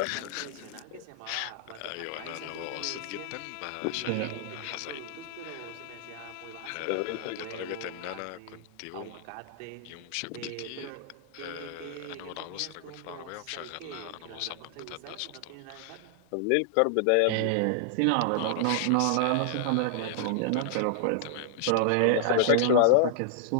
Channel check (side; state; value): both; different; correlation -0.01